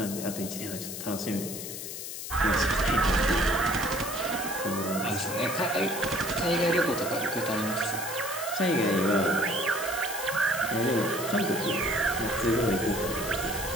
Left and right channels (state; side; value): noise; left; hiss, 7 dB below the sound